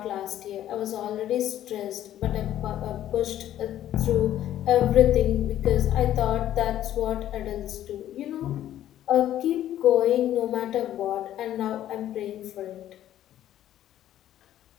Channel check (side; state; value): right; quieter; 12.2 dB